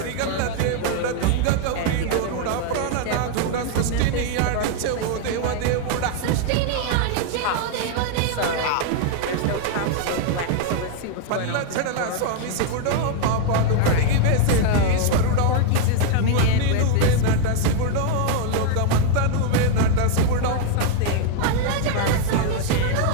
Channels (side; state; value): both; different; correlation 0.00